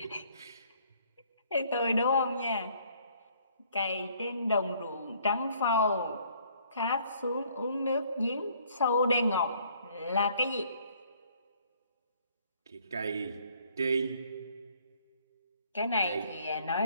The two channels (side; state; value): both; inverted; correlation -0.62